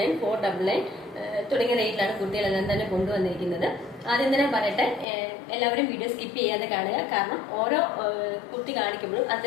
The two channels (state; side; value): drops out; right; at 5.1 s